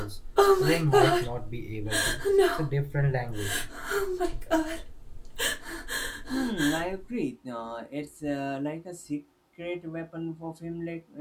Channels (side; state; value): both; identical; correlation 1.00